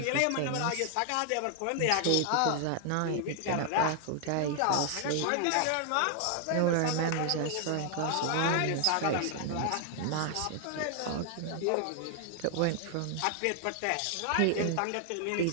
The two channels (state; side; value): different; both; correlation 0.00